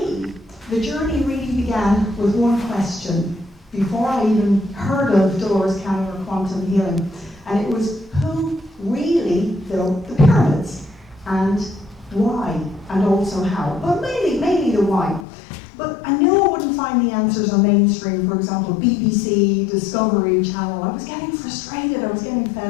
the journey really began with one question before I even heard of Dolores Cannon or quantum healing. And it was, who really built the pyramids? And why? And also how? But mainly the why. But I knew I wouldn't find the answers on mainstream, for example, BBC, Discovery Channel. I was getting frustrated, I was getting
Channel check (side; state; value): right; drops out; at 15.2 s